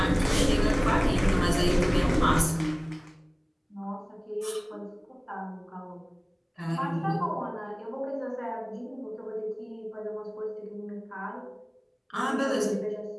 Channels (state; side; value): identical; both; correlation 1.00